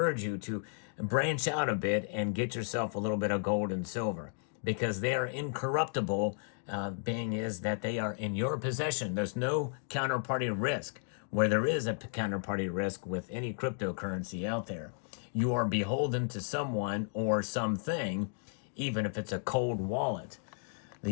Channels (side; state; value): right; silent; digital silence